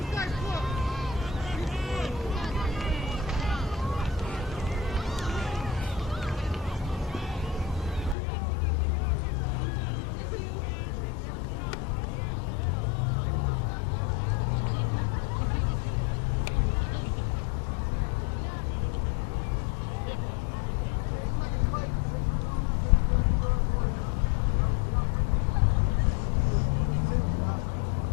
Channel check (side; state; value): right; drops out; at 8.2 s